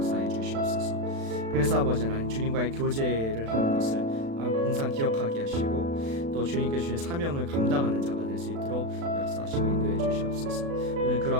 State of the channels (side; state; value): left; late; 36 ms